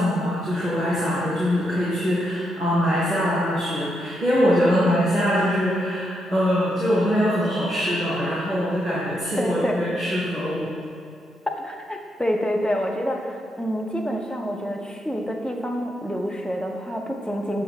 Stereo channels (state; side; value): normal; both; correlation 0.81